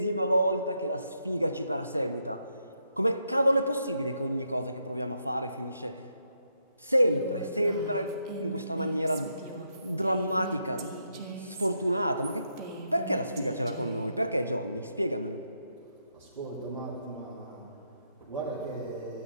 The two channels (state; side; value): inverted; both; correlation -0.79